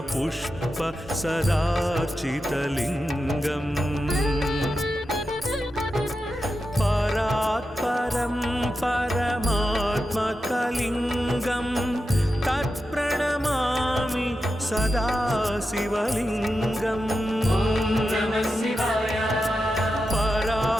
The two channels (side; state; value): both; normal; correlation 0.90